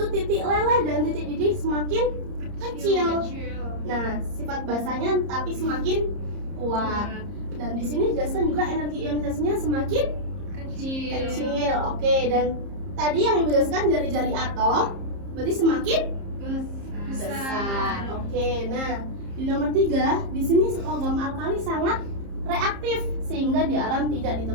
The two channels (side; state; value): left; late; 30 ms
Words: titik leleh dan titik didih semakin kecil. Nah, sifat basanya tapi semakin kuat. Dan di sini dijelaskan juga energi ionisasinya semakin kecil. Oke, dan tadi yang Ibu jelaskan jari-jari atom berarti semakin besar. Oke, nah di nomor 3, di sini logam alkali sangat reaktif sehingga di alam tidak